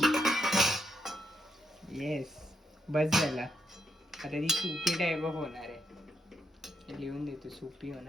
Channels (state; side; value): normal; both; correlation 0.79